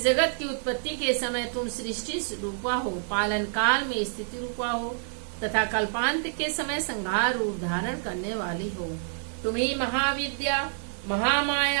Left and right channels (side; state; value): left; silent; digital silence